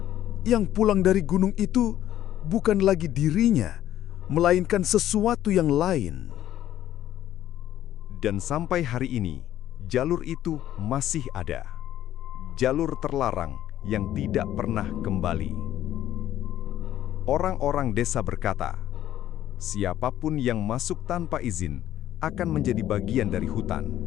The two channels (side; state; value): right; quieter; 12.4 dB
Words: yang pulang dari gunung itu bukan lagi dirinya, melainkan sesuatu yang lain? Dan sampai hari ini, jalur itu masih ada. Jalur terlarang yang tidak pernah kembali. Orang-orang desa berkata, siapapun yang masuk tanpa izin akan menjadi bagian dari hutan.